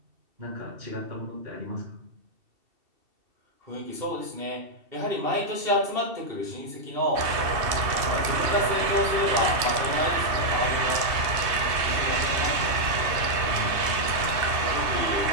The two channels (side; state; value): left; late; 2.7 ms